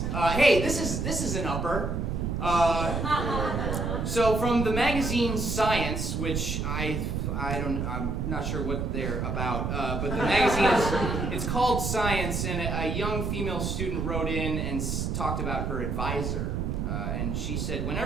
Hey, this is an upper. So from the magazine Science, which I'm not sure what they're about, but the magazine it's called Science, and a young female student wrote in and talked about her advisor, and she said,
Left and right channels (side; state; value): right; noise; rumble, 1 dB below the sound